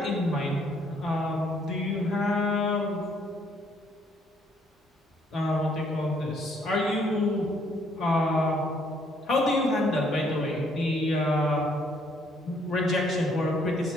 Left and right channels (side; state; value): both; normal; correlation 0.67